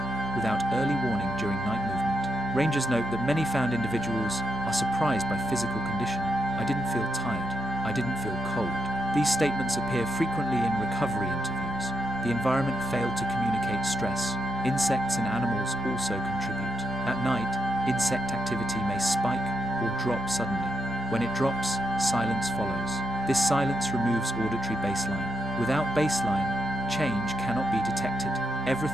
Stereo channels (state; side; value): normal; both; correlation 0.82